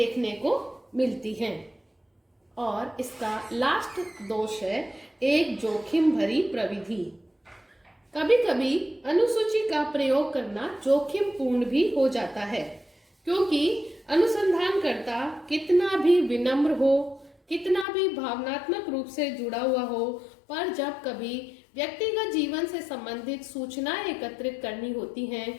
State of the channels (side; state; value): right; drops out; at 17.9 s